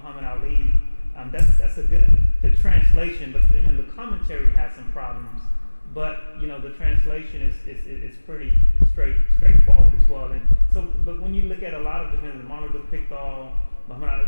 Ali, that's a good the translation, but then the commentary has some problems. But you know, the translation is pretty straightforward as well. And so, but when you look at a lot of different Muhammad Pickthall, Muhammad Ali,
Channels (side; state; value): both; inverted; correlation -1.00